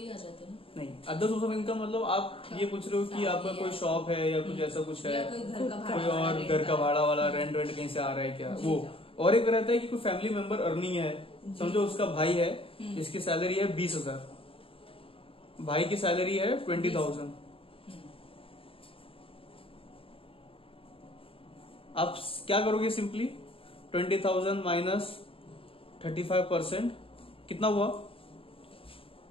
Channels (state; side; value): late; right; 0.27 ms